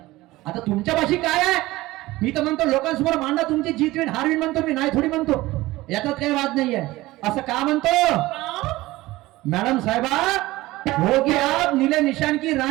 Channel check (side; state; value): left; quieter; 18.6 dB